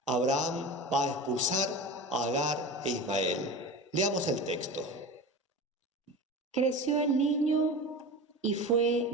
Abraham va a expulsar a Agar e Ismael. Leamos el texto. Creció el niño y fue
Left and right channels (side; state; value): both; normal; correlation 0.30